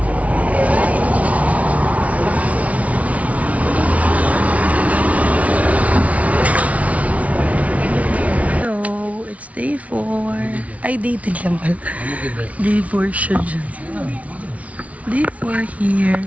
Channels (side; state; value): left; late; 0.067 ms